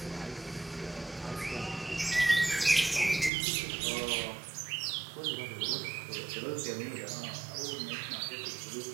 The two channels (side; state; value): left; drops out; at 3.3 s